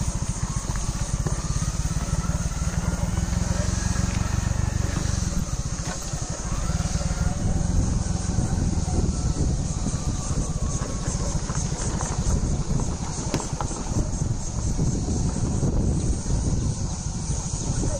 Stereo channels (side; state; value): both; identical; correlation 1.00